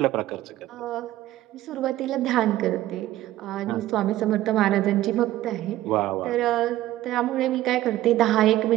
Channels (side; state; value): left; quieter; 14.8 dB